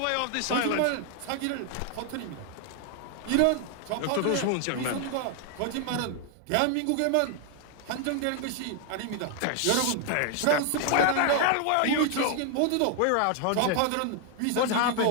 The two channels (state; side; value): different; both; correlation 0.00